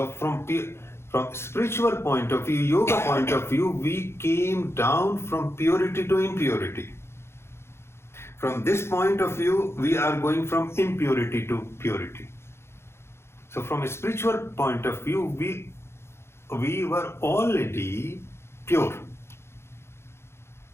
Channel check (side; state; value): right; late; 0.12 ms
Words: from spiritual point of view, yoga point of view, we came down from purity to impurity. From this point of view, we are going from impurity to purity. So from a spiritual point of view, we were already pure.